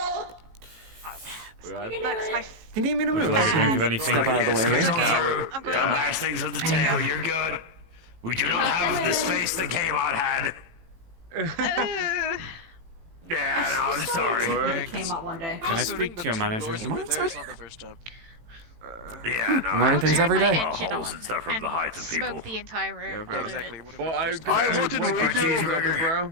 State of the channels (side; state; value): left; late; 18 ms